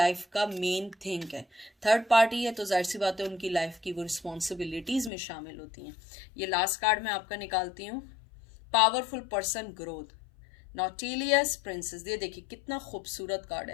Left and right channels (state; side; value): drops out; right; at 5.1 s